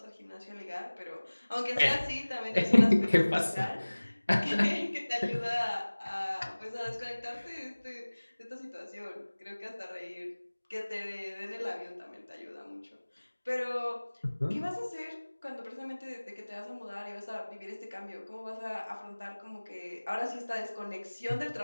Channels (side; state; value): both; inverted; correlation -1.00